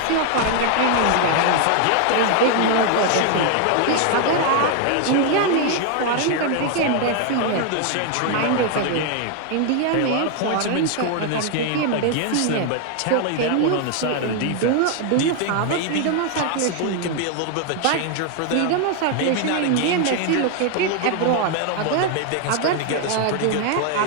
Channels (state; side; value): different; both; correlation 0.00